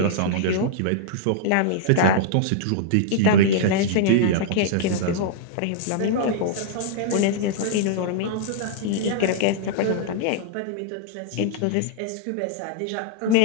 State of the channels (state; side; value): different; both; correlation -0.01